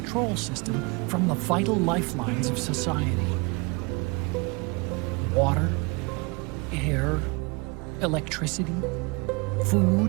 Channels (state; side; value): quieter; left; 29.0 dB